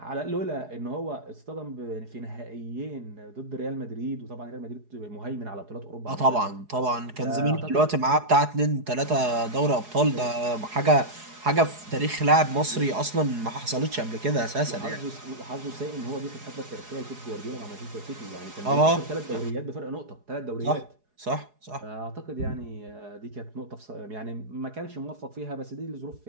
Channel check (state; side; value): late; left; 4.8 ms